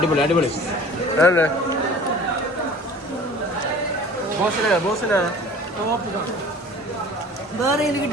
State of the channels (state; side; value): normal; both; correlation 0.45